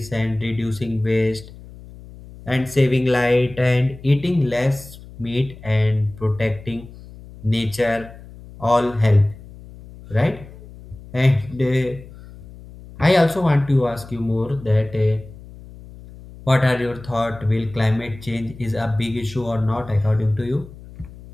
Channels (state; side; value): noise; left; hum, 18 dB below the sound